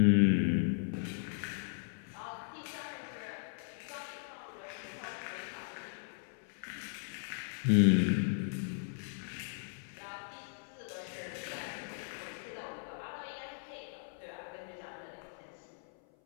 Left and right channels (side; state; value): right; silent; 53 dB below the other